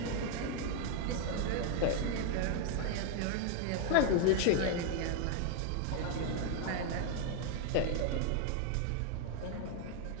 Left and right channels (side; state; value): both; different; correlation 0.00